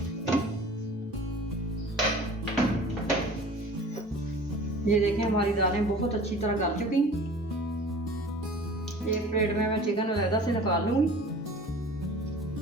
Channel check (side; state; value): both; normal; correlation 0.43